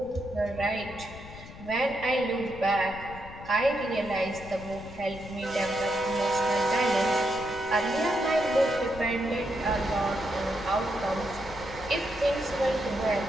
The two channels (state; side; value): noise; left; rumble, 15 dB below the sound